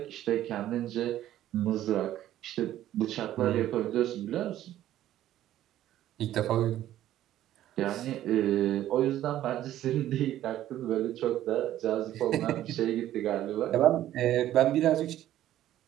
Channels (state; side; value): quieter; left; 12.9 dB